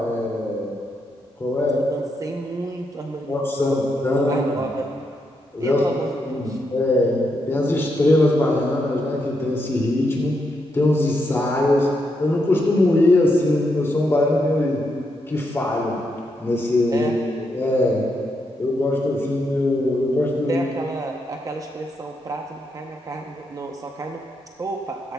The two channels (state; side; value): normal; both; correlation 0.81